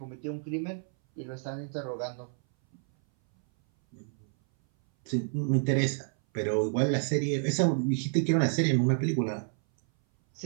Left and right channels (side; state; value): left; silent; 58 dB below the other